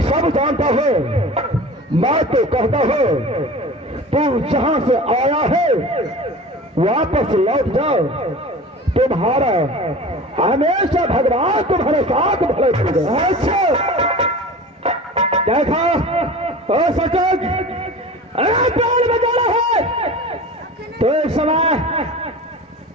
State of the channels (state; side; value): normal; both; correlation 0.36